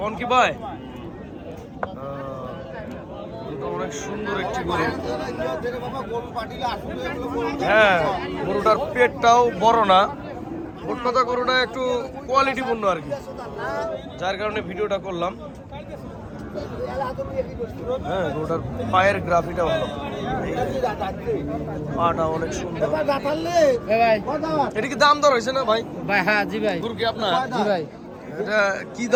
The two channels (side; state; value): both; identical; correlation 1.00